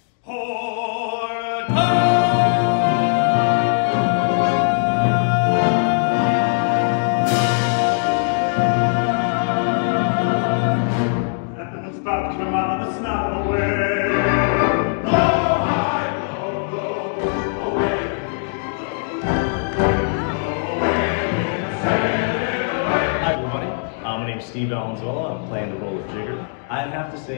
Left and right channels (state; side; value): silent; right; digital silence